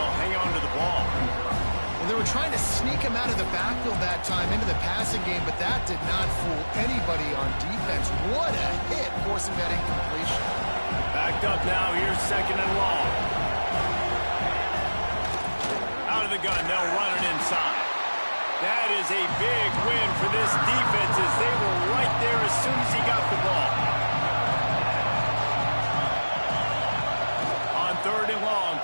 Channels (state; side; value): inverted; both; correlation -1.00